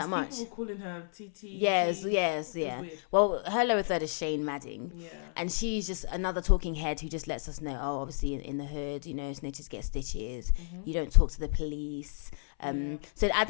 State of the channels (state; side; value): silent; right; 57 dB below the other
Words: people were calling her TT. Yes. It was weird. Well, her lower third is Shane Madding. Yeah. And she's just another talking head who just lets us know, obviously in the hood, you know, snitches get stitches. Mm-hmm. You don't talk to the police. So at